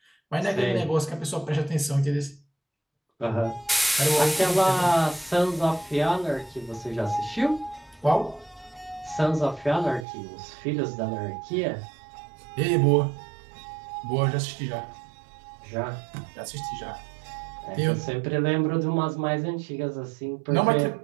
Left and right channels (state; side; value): drops out; left; at 10.1 s